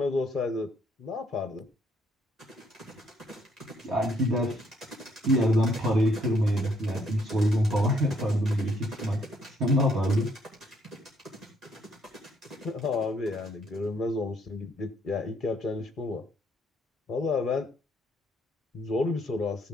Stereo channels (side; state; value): both; normal; correlation 0.69